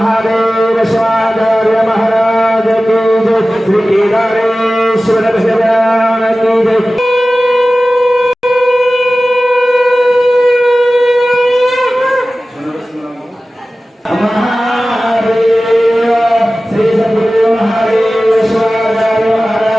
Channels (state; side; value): normal; both; correlation 0.96